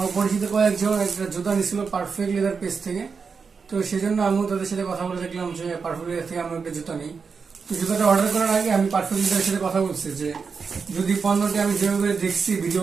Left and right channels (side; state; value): left; quieter; 5.4 dB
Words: পরিচিত কয়েকজন একটা জুতা নিছিল পারফেক্ট লেদার পেজ থেকে। তো সেজন্য আমিও তাদের সাথে কথা বলে দেখলাম যে পারফেক্ট লেদার থেকে আমি একটা জুতা নিই। তো জুতাটা অর্ডার করার আগে আমি পারফেক্ট লেদারের সাথে কথা বলছি যে যদি পণ্যটি আমি যেভাবে দেখছি